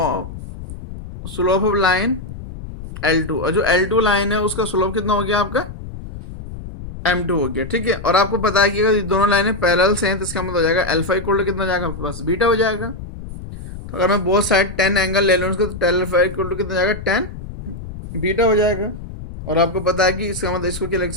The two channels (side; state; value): left; noise; rumble, 11 dB below the sound